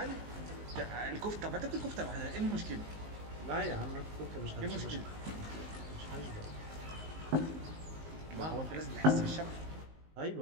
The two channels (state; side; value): late; left; 19 ms